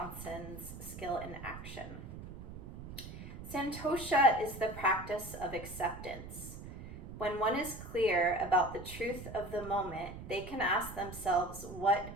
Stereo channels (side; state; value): right; noise; rumble, 11 dB below the sound